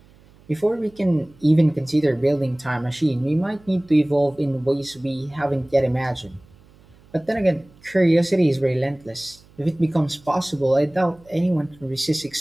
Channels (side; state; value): right; noise; hum, 27 dB below the sound